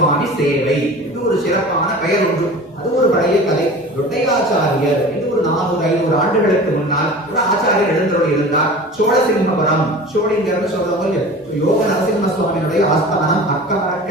சேவை இது ஒரு சிறப்பான பெயர் உண்டு. அது ஒரு பழைய கதை. தொட்டையாச்சாரியர் இது ஒரு 400-500 ஆண்டுகளுக்கு முன்னால் ஒரு ஆச்சாரியர் எழுந்தருளி இருந்தார். சோழசிம்மபுரம், சோழிங்கர்னு சொல்றவங்க யோக நரசிம்ம சுவாமியுடைய ஆஸ்தானம்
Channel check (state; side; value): normal; both; correlation 0.38